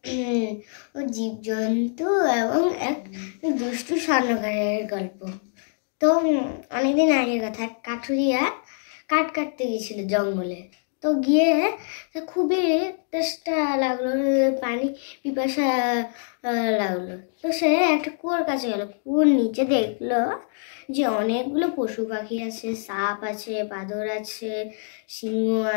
জীবজন্তু এবং এক দুষ্টু স্বর্ণকারের গল্প। তো অনেকদিন আগের কথা, কাঠুরিয়া কাঠ কাটতে গেছিল জঙ্গলে। তো গিয়ে খুবই তেষ্টা লাগলো, পানি পিপাসা লাগলো। তো সে একটা কুয়োর কাছে গেল। কুয়োর নিচে দেখলো যে অনেকগুলো পশু পাখি আছে, সাপ আছে, বাঁদর আছে, সিংহ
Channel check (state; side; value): silent; right; 62 dB below the other